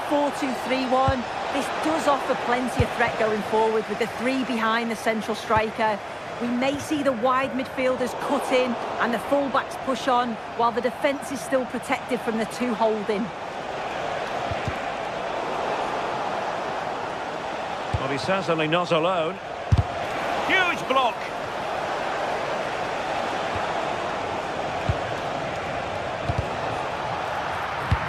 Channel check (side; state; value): both; identical; correlation 1.00